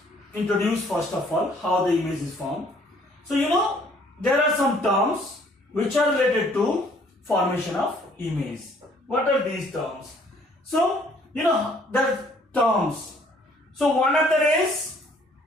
introduce first of all how the image is formed. So there are some terms which are related to formation of image. What are these terms? So there are terms. So one of the rays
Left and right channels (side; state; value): both; normal; correlation 0.60